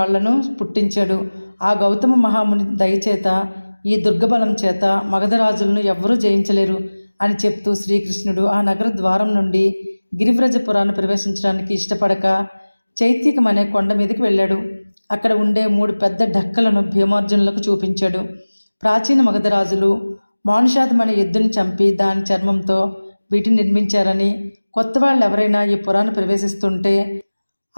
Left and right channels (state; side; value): inverted; both; correlation -1.00